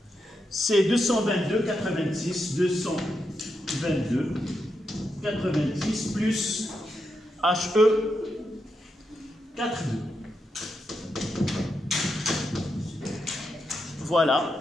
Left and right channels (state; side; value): normal; both; correlation 0.84